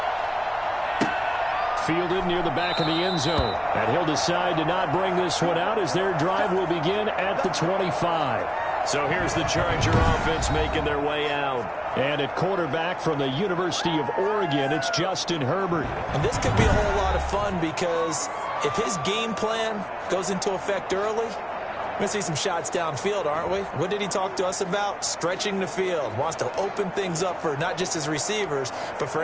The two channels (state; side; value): identical; both; correlation 1.00